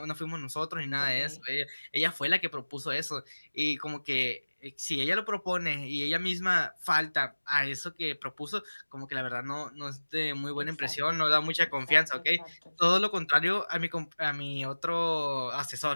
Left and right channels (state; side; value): inverted; both; correlation -1.00